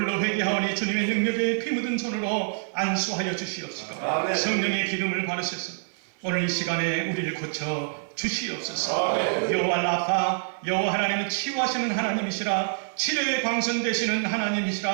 회개하오니 주님의 능력에 피 묻은 손으로 안수하여 주시옵시고 성령의 기름을 바르셔서 오늘 이 시간에 우리를 고쳐 주시옵소서. 여호와 라파, 여호와 하나님은 치유하시는 하나님이시라, 치료의 광선 되시는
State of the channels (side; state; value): left; silent; 59 dB below the other